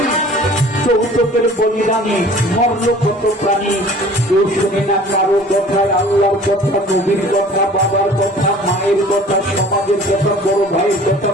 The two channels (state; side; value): normal; both; correlation 0.47